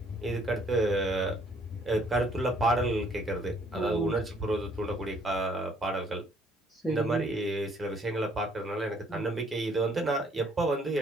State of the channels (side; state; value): both; normal; correlation 0.63